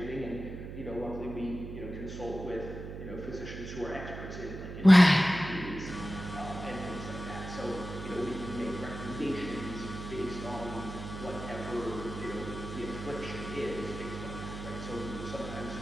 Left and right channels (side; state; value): right; noise; hum, 9 dB below the sound